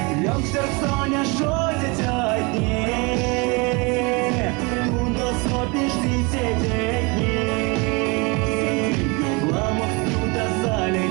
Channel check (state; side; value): quieter; left; 28.4 dB